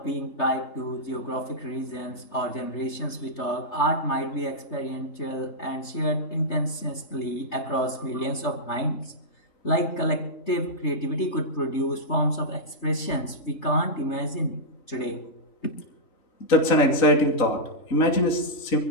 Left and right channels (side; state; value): right; late; 3.3 ms